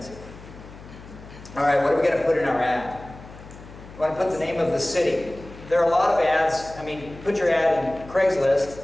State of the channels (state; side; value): noise; left; hum, 17 dB below the sound